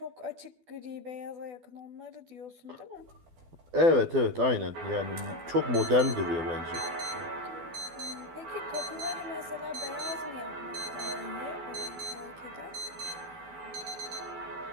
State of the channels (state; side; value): late; left; 12 ms